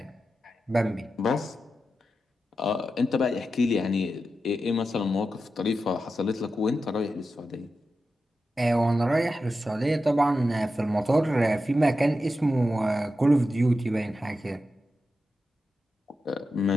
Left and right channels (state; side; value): normal; both; correlation 0.90